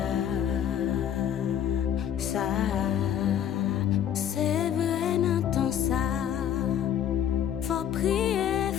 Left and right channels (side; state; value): right; quieter; 9.7 dB